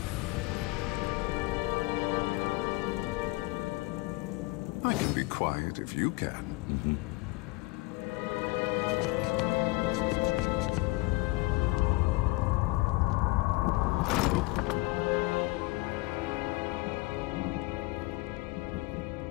quiet if you can.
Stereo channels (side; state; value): right; quieter; 22.3 dB